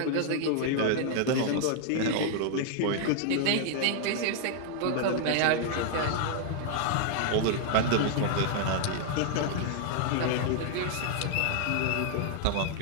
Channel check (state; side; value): different; both; correlation -0.01